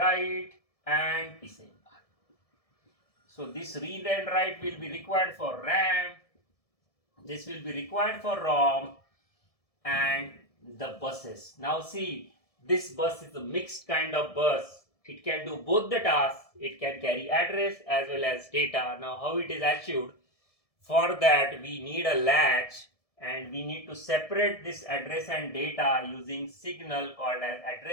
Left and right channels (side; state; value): right; late; 1.7 ms